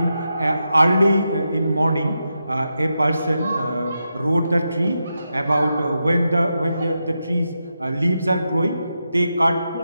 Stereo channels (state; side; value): inverted; both; correlation -0.87